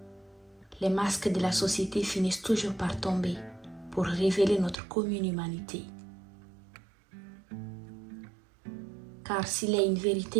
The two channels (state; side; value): drops out; left; at 4.8 s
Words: les masques de la société finissent toujours par tomber pour révéler notre commune humanité. Car s'il y a une